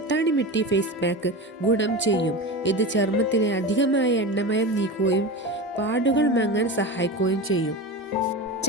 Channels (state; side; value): normal; both; correlation 0.26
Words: മിട്ടി ഫേസ് പാക്ക് ഗുണം ചെയ്യും. ഇത് ചർമ്മത്തിലെ അധികമായ എണ്ണമയം നീക്കുകയും പാടുകൾ മങ്ങാൻ സഹായിക്കുകയും ചെയ്യും.